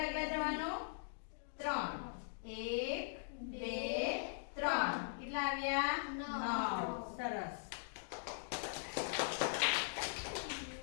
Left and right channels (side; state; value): right; silent; digital silence